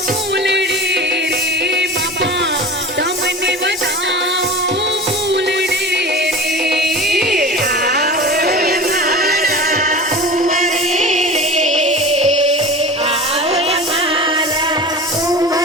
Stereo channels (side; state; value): both; normal; correlation 0.34